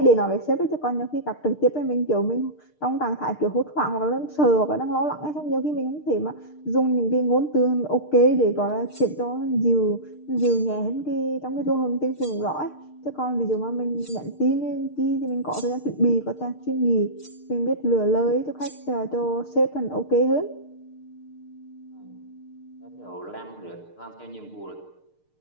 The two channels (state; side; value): late; right; 6.6 ms